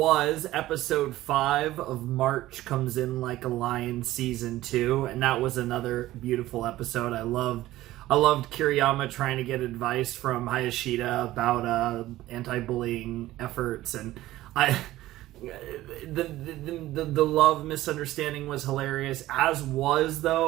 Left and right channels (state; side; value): quieter; left; 15.8 dB